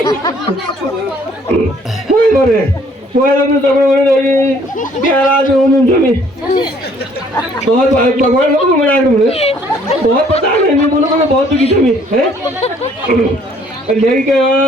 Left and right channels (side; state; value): both; normal; correlation 0.61